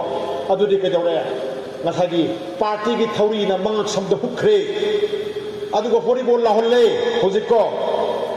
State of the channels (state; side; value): identical; both; correlation 1.00